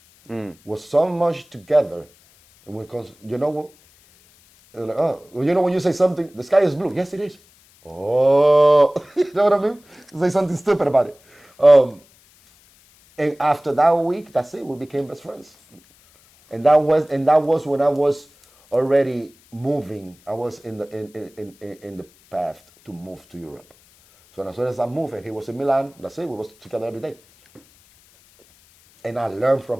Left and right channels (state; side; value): noise; left; hiss, 30 dB below the sound